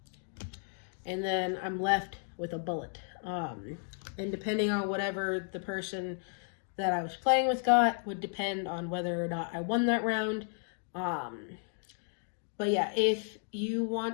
And then I'm left with a bullet. And depending on whatever the person that I was playing with got would depend on whether or not I won that round. But yeah, if you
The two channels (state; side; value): silent; right; 55 dB below the other